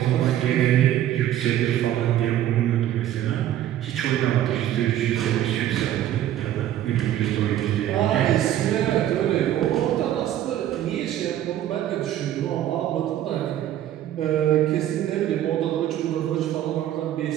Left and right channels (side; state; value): left; quieter; 12.1 dB